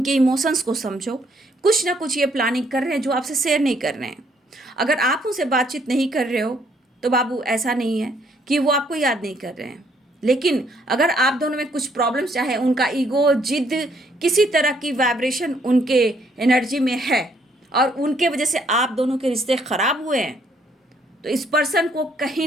इमोशंस को समझो। कुछ ना कुछ ये प्लानिंग कर रहे हैं जो आपसे शेयर नहीं कर रहे हैं। अगर आप उनसे बातचीत नहीं कर रहे हो तो बाबू ऐसा नहीं है कि वो आपको याद नहीं कर रहे हैं। लेकिन अगर आप दोनों में कुछ प्रॉब्लम्स, चाहे उनका ईगो, जिद, किसी तरह की वाइब्रेशन उनके एनर्जी में है और उनके वजह से आप दोनों के रिश्ते ख़राब हुए हैं, तो इस पर्सन को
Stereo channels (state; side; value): normal; both; correlation 0.68